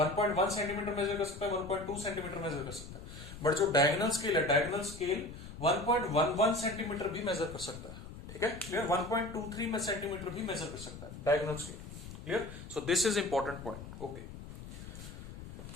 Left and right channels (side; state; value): left; noise; rumble, 12 dB below the sound